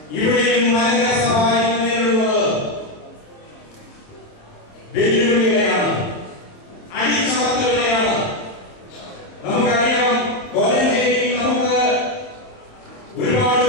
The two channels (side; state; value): right; late; 26 ms